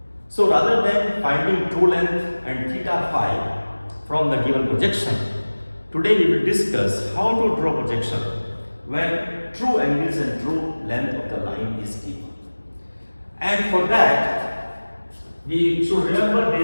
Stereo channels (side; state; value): both; inverted; correlation -1.00